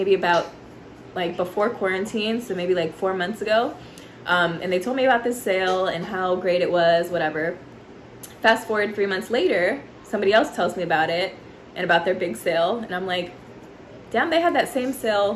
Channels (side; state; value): both; identical; correlation 1.00